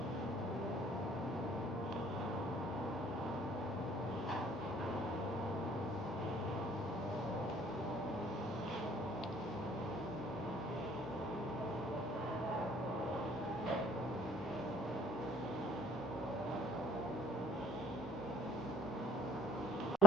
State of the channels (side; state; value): both; normal; correlation 0.54